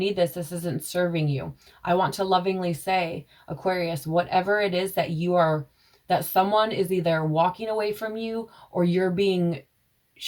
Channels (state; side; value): identical; both; correlation 1.00